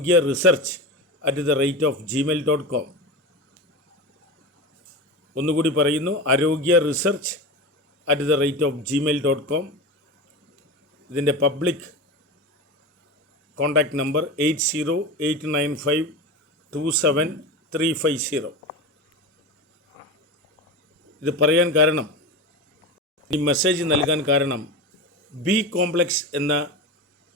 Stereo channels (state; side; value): normal; both; correlation 0.25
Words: ഒന്നുകൂടി പറയുന്നു, arogyaresearch@gmail.com. ഇതിൻ്റെ പബ്ലിക് കോൺടാക്റ്റ് നമ്പർ 8089527350. ഇത് പറയാൻ കാരണം, ഈ മെസ്സേജ് നൽകാൻ കാരണം, ബി കോംപ്ലക്സ് എന്ന